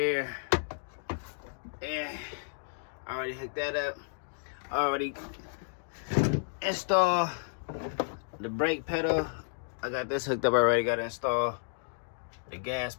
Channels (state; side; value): silent; right; digital silence